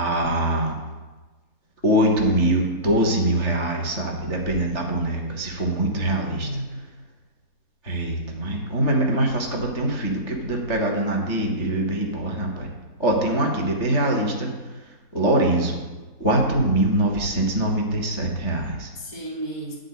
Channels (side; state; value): right; late; 3.4 ms